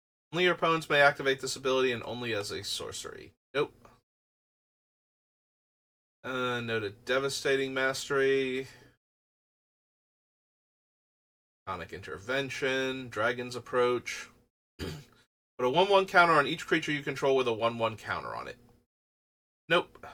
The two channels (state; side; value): identical; both; correlation 1.00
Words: your opponents may activate this ability and only as a sorcery. Nope. No to Devastating Mastery. Sonic Intervention. Dragon's Approach. Put a 1/1 counter on each creature you control with a 1/1 counter on it. Nope.